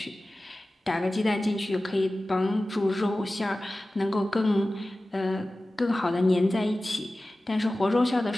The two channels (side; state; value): both; normal; correlation 0.96